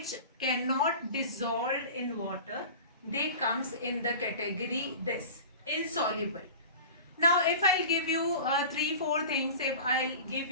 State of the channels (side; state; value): both; inverted; correlation -0.36